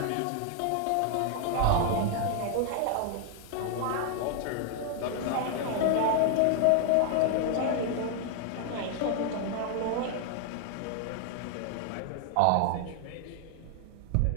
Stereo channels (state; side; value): different; both; correlation 0.00